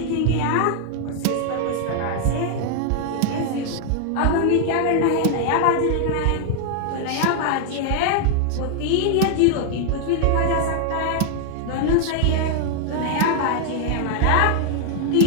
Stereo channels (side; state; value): both; different; correlation 0.00